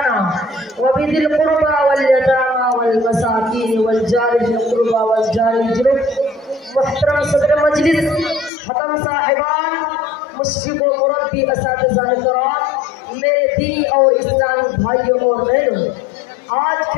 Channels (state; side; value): drops out; right; at 8.5 s